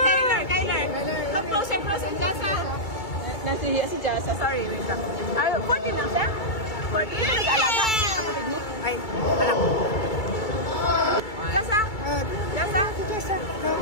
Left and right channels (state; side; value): late; right; 2.3 ms